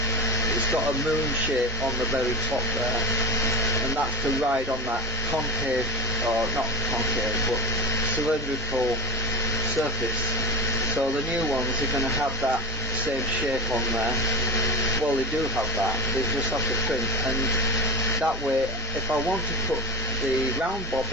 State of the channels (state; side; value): normal; both; correlation 0.22